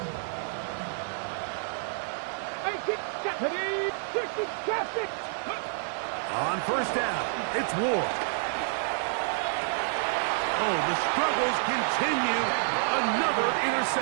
18, 70, 60, traffic. On 1st down, it's Ward. Oh, the struggles continue. Another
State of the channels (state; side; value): silent; left; digital silence